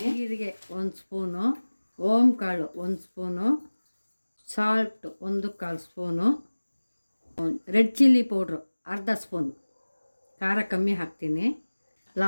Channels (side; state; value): both; inverted; correlation -1.00